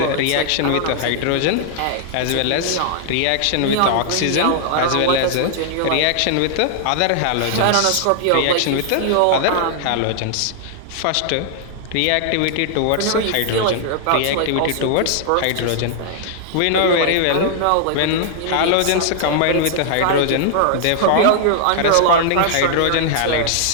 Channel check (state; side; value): different; both; correlation -0.01